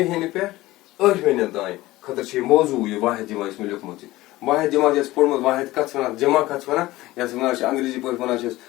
پہ 8 مہینے تین خاطر موضوع یہ واحد جمع اس میں لکھمت واحد جمع یس پورمت واحد کت ونان جمع کت ونان یس ونان انگریزی پہ ونان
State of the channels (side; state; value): right; quieter; 18.0 dB